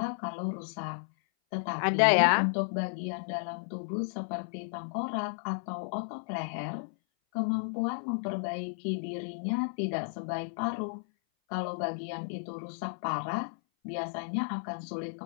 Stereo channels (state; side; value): silent; right; 56 dB below the other